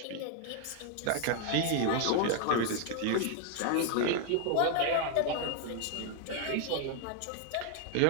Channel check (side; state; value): both; different; correlation 0.00